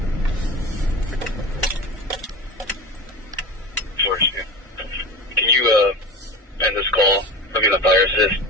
George, can you end this call? I'll be the fire assist.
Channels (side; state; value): both; normal; correlation 0.30